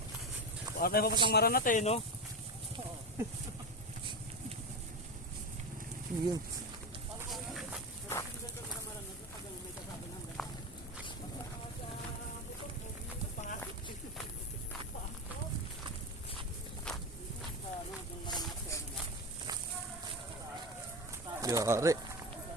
Baka tayo papasang maranat eh, no? Yun. Yari.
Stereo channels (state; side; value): normal; both; correlation 0.19